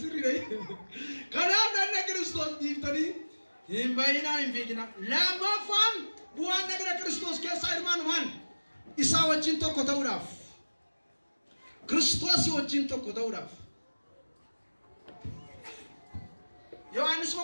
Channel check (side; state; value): both; inverted; correlation -1.00